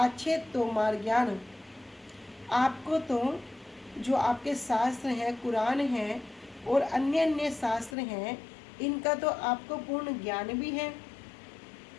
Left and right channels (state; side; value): drops out; right; at 8.0 s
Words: तोमार ज्ञान, आपको तो जो आपके शास्त्र हैं, कुरान हैं और अन्य अन्य शास्त्र हैं, इनका तो आपको पूर्ण ज्ञान भी है।